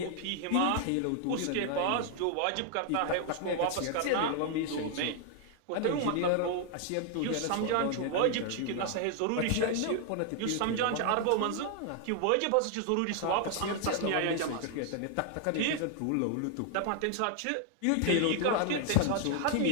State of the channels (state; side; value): different; both; correlation 0.00